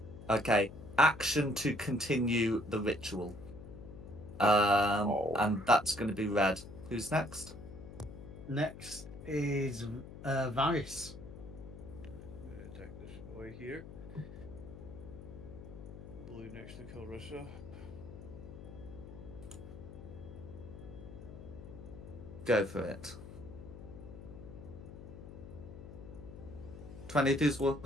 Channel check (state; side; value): noise; left; hum, 13 dB below the sound